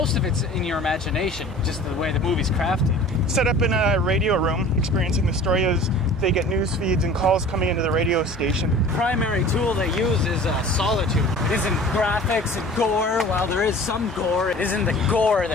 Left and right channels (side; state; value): both; normal; correlation 0.44